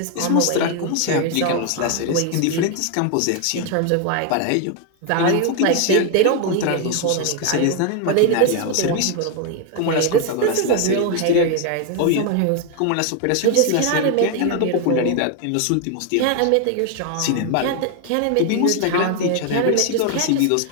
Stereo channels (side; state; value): both; different; correlation 0.01